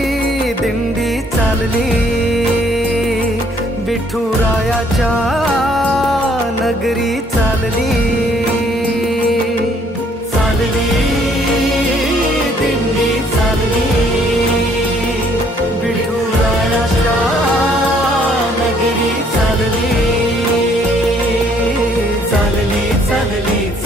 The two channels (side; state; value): both; normal; correlation 0.64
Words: दिंडी चालली विठुरायाच्या नगरी, चालली चालली दिंडी चालली विठुरायाच्या नगरी, चालली चालली चालली